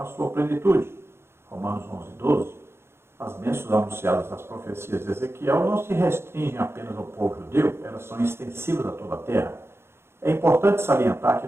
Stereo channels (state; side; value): late; left; 0.12 ms